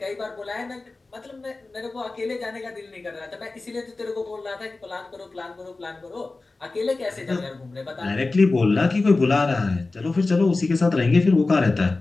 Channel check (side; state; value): right; quieter; 3.4 dB